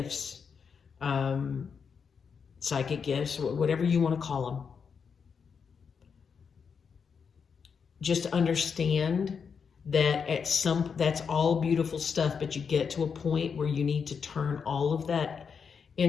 psychic gifts, whatever you want to call them, just understand that that's all beautiful stuff, but you get to a point where you need to turn all of that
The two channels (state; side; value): quieter; right; 6.2 dB